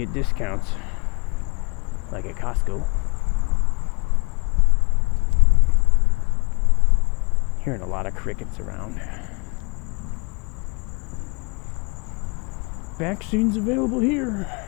discounts. like at Costco. Hearing a lot of crickets around. Vaccines available here.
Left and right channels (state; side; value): quieter; right; 29.9 dB